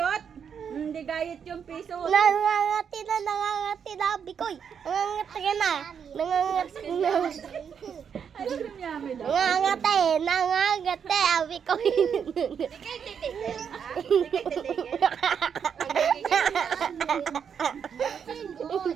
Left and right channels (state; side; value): quieter; left; 7.4 dB